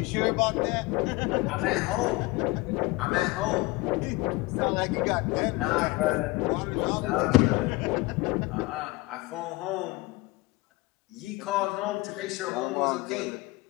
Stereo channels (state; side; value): quieter; right; 21.8 dB